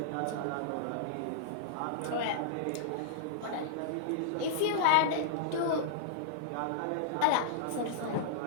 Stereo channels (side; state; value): both; different; correlation -0.02